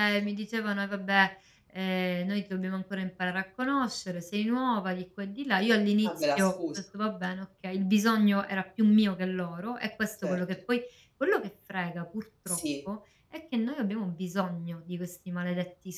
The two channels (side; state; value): both; identical; correlation 1.00